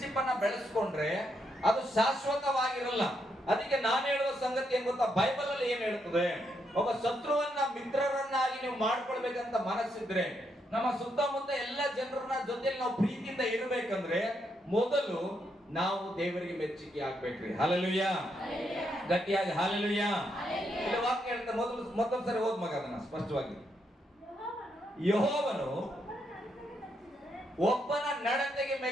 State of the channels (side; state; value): both; normal; correlation 0.79